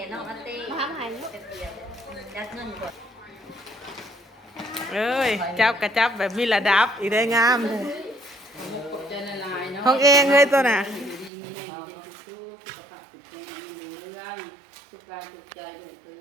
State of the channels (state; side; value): drops out; left; at 11.3 s